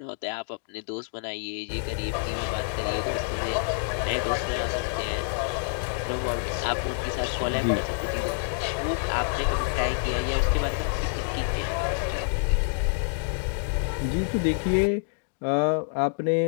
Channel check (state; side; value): silent; right; digital silence